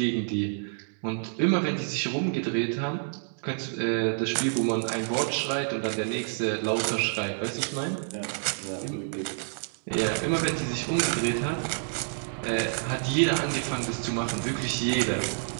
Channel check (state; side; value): silent; left; 59 dB below the other